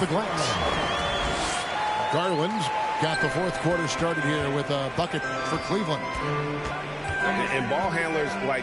glass. Garland's got the fourth quarter started here with a bucket for Cleveland. And ball handlers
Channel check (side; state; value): both; identical; correlation 1.00